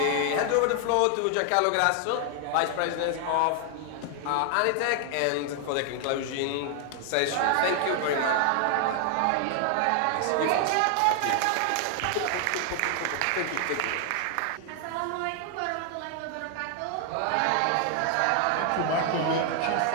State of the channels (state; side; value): different; both; correlation 0.00